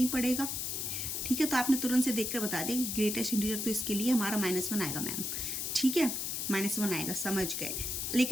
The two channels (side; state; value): left; noise; hiss, 2 dB below the sound